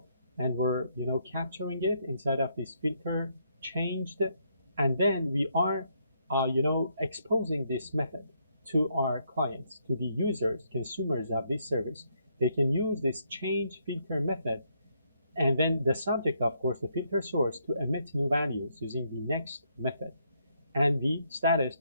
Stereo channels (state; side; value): inverted; both; correlation -0.74